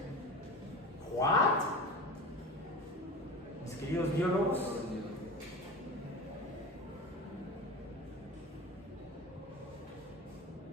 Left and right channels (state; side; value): normal; both; correlation 0.30